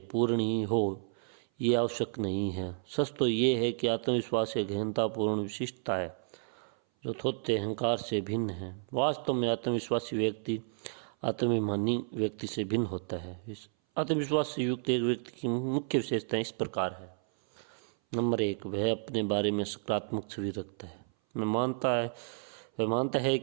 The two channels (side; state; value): left; silent; 56 dB below the other